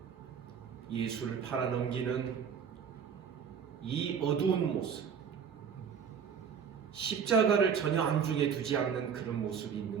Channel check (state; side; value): quieter; left; 7.1 dB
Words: 예수를 팔아넘기는 이 어두운 모습, 십자가를 전혀 안중에 두지 않는 그런 모습이